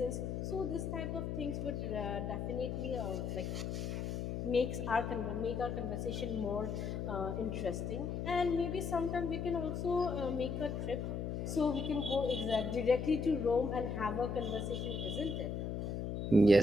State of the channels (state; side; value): noise; left; hum, 3 dB below the sound